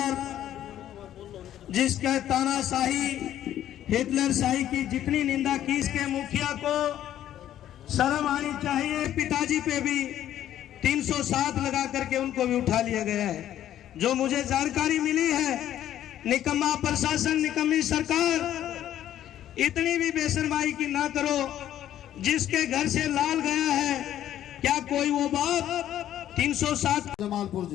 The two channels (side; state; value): right; quieter; 11.7 dB